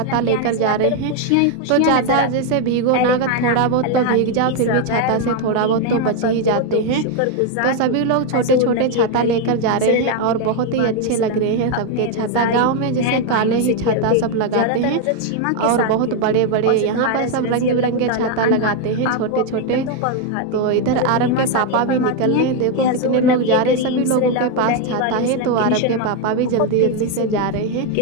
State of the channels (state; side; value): different; both; correlation 0.01